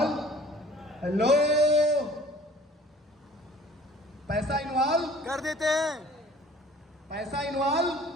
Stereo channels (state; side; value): normal; both; correlation 0.50